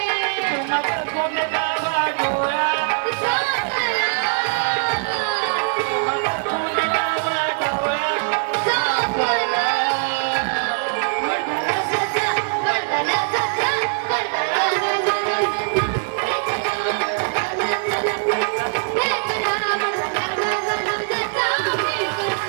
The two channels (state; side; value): silent; left; 62 dB below the other